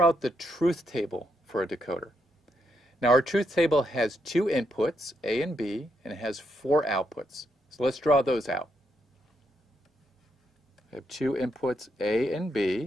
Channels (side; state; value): both; normal; correlation 0.79